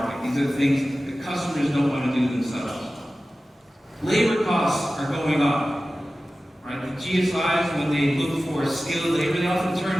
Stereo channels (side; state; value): both; normal; correlation 0.96